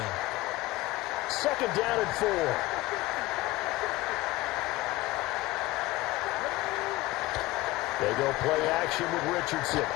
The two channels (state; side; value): quieter; right; 18.6 dB